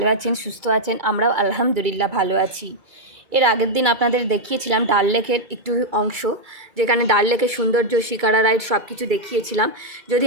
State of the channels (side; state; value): left; late; 2.3 ms